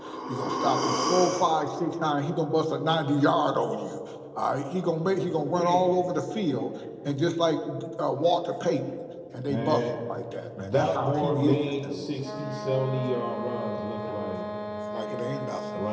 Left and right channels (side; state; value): both; identical; correlation 1.00